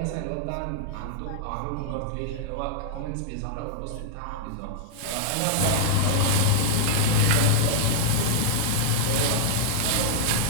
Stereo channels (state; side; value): different; both; correlation -0.01